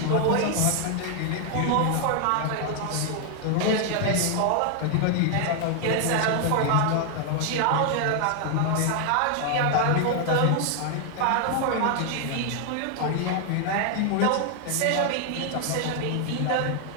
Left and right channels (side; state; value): both; different; correlation 0.00